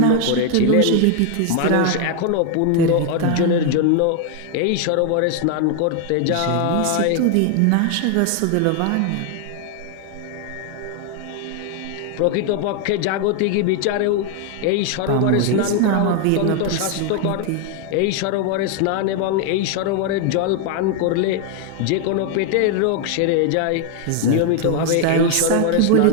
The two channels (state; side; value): different; both; correlation 0.01